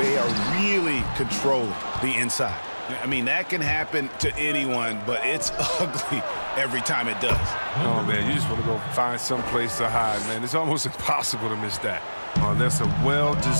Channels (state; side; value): inverted; both; correlation -1.00